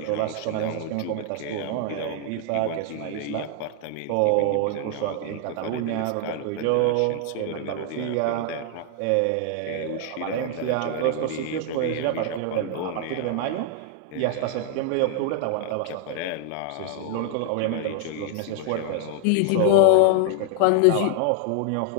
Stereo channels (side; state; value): both; different; correlation 0.00